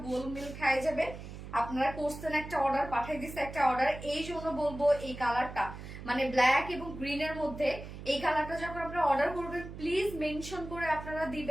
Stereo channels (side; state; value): right; noise; hum, 11 dB below the sound